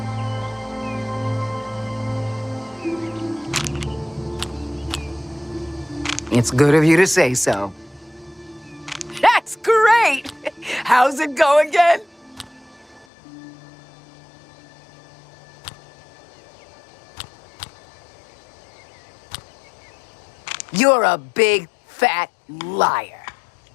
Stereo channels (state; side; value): drops out; right; at 13.1 s